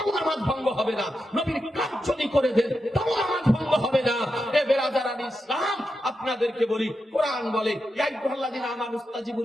নামাজ ভঙ্গ হবে না। নবীর কাজ যদি করে দেন, তাও নামাজ ভঙ্গ হবে না। এ বেরাদারান ইসলাম, আপনাদেরকে বলি, কোরআন বলে, ইয়া আইয়ুহাল্লাযীনা আমানু ইসতাজিবু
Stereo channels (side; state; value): both; normal; correlation 0.88